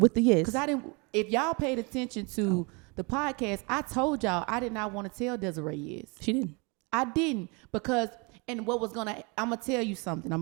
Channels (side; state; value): left; quieter; 30.5 dB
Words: the yes. Because if y'all paid attention to the podcast, I told y'all I did not want to tell Desiree yes. She didn't. I didn't, because, and I'm going to tell you something. I'm